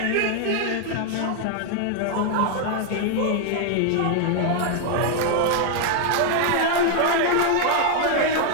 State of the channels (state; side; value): different; both; correlation 0.00